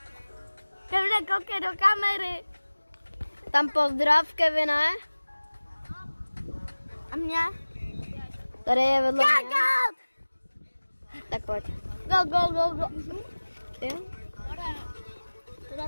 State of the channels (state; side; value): inverted; both; correlation -1.00